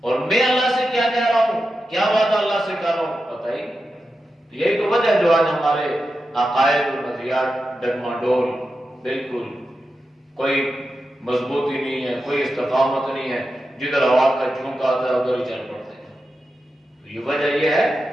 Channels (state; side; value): normal; both; correlation 0.90